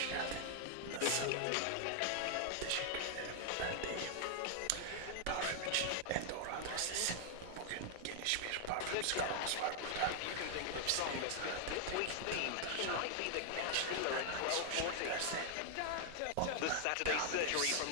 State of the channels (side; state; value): both; different; correlation 0.00